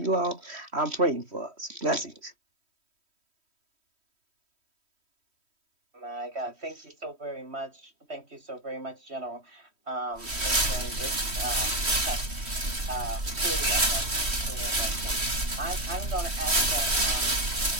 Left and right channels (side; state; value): left; late; 3.1 ms